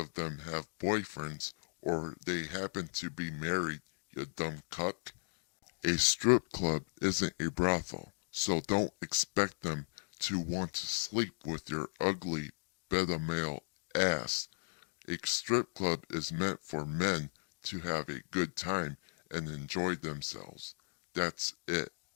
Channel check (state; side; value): silent; right; digital silence